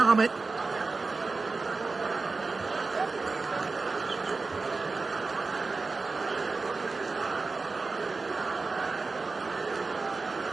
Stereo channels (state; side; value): quieter; left; 4.0 dB